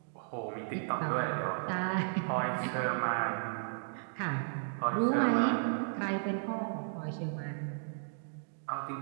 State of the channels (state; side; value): silent; left; digital silence